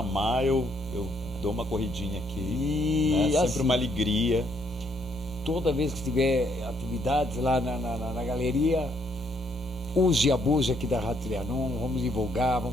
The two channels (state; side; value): normal; both; correlation 0.71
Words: eu dou uma corridinha aqui. E Sempre assim, uma alegria. toda vez que tiver atividades lá na galeria, use e abuse aqui da Rádio Trianon, vamos divulgar,